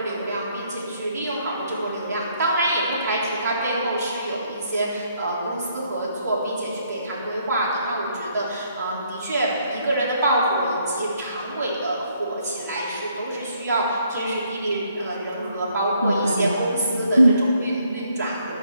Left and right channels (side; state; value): both; inverted; correlation -0.69